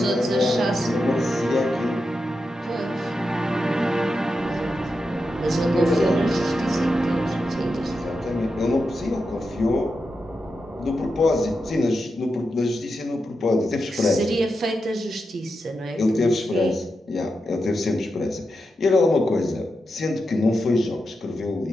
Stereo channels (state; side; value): normal; both; correlation 0.88